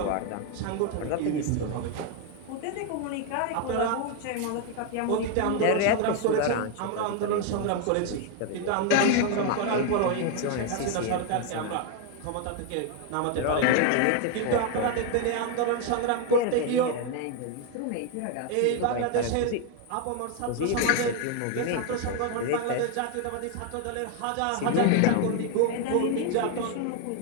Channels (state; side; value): different; both; correlation 0.01